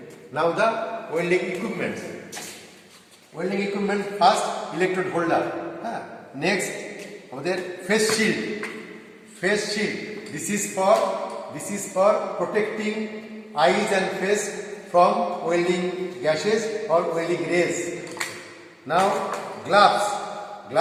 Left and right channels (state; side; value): identical; both; correlation 1.00